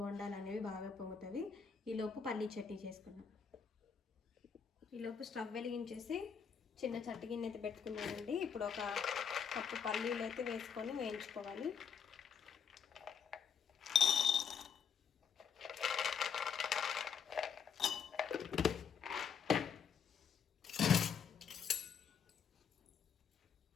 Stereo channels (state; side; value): quieter; right; 6.8 dB